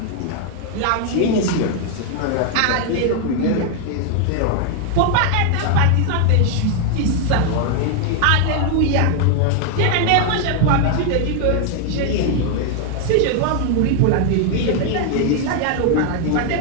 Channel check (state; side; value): different; both; correlation 0.00